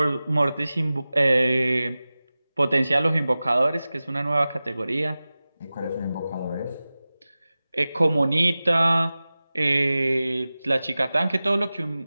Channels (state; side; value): inverted; both; correlation -0.97